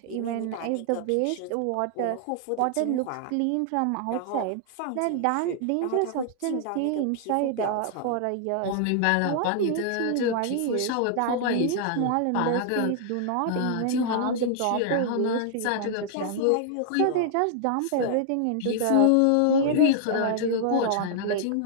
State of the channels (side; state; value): both; different; correlation 0.00